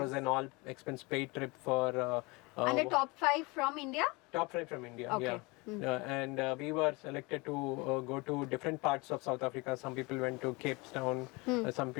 was an all expense paid trip for And the top 5 from India? top 5 from India. Okay. Yeah. And we were selected to go to different parts of South Africa. Some people went to Cape Town, some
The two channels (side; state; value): right; quieter; 26.1 dB